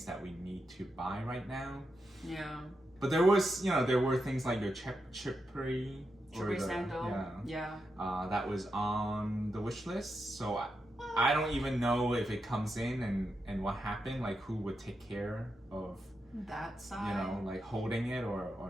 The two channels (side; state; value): both; normal; correlation 0.86